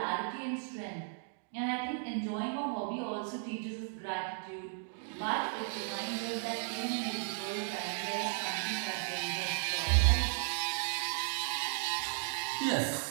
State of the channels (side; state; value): left; silent; digital silence